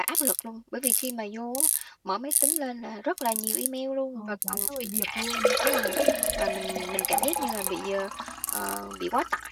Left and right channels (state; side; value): identical; both; correlation 1.00